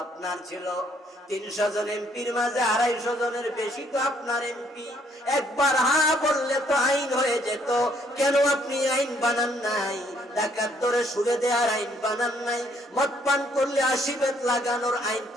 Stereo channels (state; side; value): normal; both; correlation 0.67